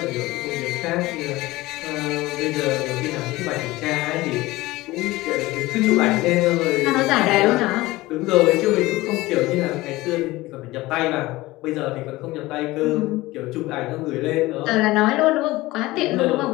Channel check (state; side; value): quieter; right; 19.2 dB